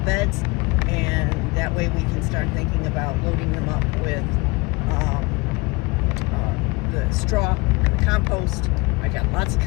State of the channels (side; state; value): right; quieter; 25.2 dB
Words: beds, and that way we can start thinking about loading them up with the straw and the compost. I got lots of